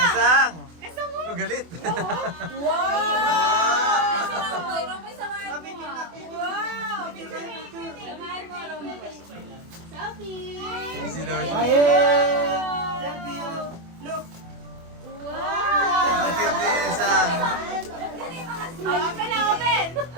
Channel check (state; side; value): late; left; 24 ms